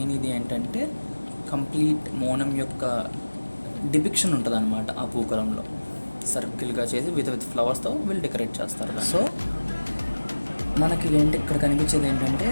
ఇది ఏంటంటే కంప్లీట్ ఓనం యొక్క డిపిక్షన్ ఉంటుంది అన్నమాట. ఆ పూకలంలో సర్కిల్గా చేసి విత్ ఫ్లవర్స్తో వీళ్ళు డెకరేట్ చేస్తారు. సో మనకి ఇక్కడ కనిపించేది ఏంటంటే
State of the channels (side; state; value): both; inverted; correlation -1.00